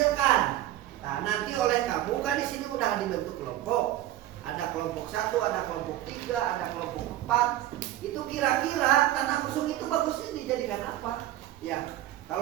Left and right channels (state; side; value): quieter; left; 13.8 dB